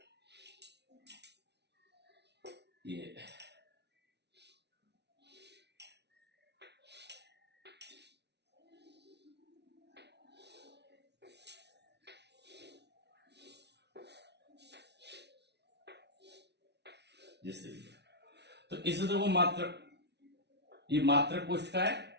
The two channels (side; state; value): left; late; 0.50 ms